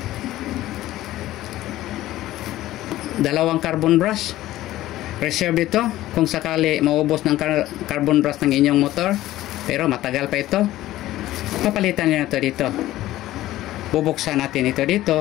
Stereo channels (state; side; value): quieter; right; 15.2 dB